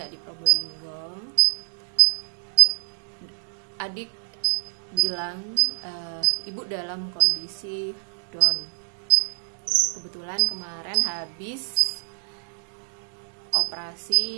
di Probolinggo. Adik bilang ibu dalam kondisi down. Kebetulan kemarin habis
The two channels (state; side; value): silent; left; digital silence